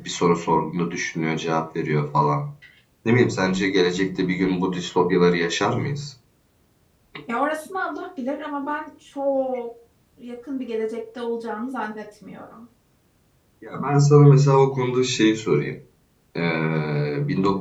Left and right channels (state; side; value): identical; both; correlation 1.00